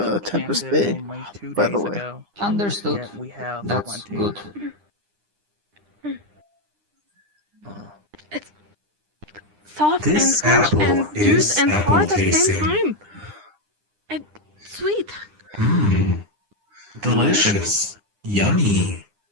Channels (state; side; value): late; left; 9.9 ms